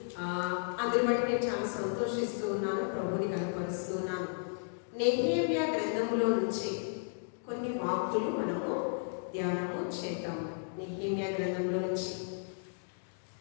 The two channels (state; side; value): silent; right; digital silence